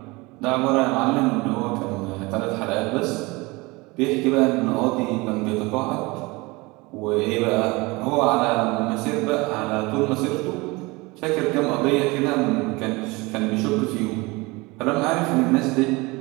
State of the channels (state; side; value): quieter; left; 24.1 dB